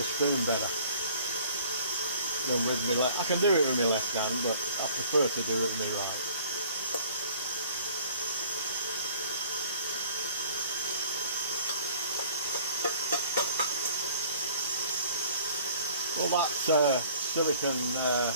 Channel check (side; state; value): both; inverted; correlation -0.53